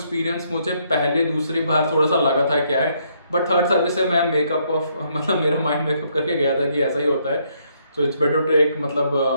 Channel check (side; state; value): both; inverted; correlation -0.72